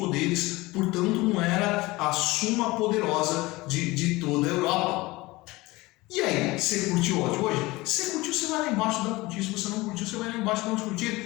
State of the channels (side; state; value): right; quieter; 21.1 dB